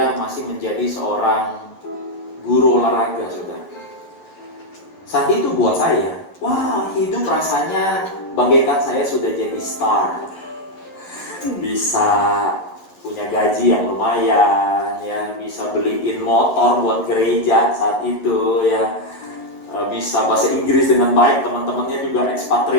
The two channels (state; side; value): late; right; 11 ms